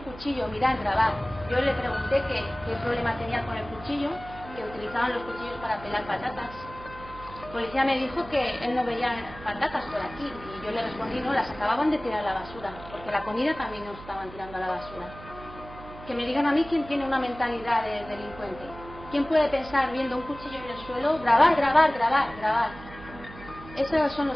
cuchillo, mirad, grabad. Yo le pregunté qué problema tenía con el cuchillo, que utilizaban los cuchillos para pelar patatas. El policía me dijo que él no veía patatas por aquí, y yo le respondí: no, las acababan de tirar a la basura, porque la comida también nos estaban tirando a la basura. Que me digan a mí quién tiene una mentalidad de delincuente. ¿Quién puede pensar viendo un cuchillo en el suelo, grabar? Esos son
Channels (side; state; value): right; noise; hum, 16 dB below the sound